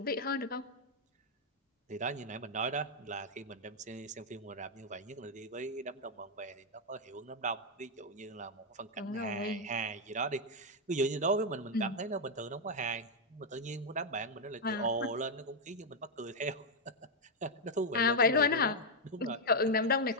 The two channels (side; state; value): both; normal; correlation -0.01